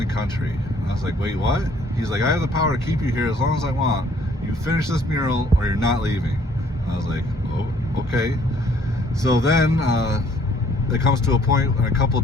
country." And I was like, "Wait, what?" He's like, "I have the power to keep you here as long as I want. You finish this mural or you're not leaving." And I was like, "Oh, okay." So then it comes to a point in a couple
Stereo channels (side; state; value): both; normal; correlation 0.61